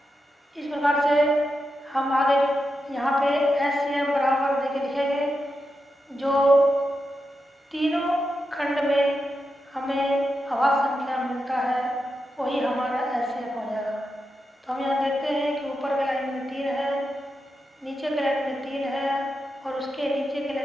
इस प्रकार से हम आगे यहाँ पे HCF बराबर देके लिखेंगे, जो तीनों खंड में हमें अभाज्य संख्या मिलता है वही हमारा HCF हो जाएगा। तो हम यहाँ देखते हैं कि ऊपर के लाइन में 3 है, नीचे के लाइन में 3 है और उसके नीचे के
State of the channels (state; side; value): normal; both; correlation 0.87